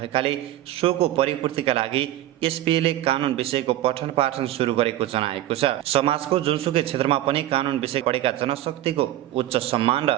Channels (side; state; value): left; quieter; 13.9 dB